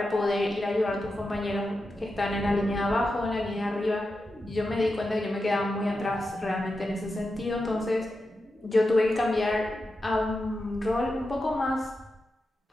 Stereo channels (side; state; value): both; normal; correlation 0.89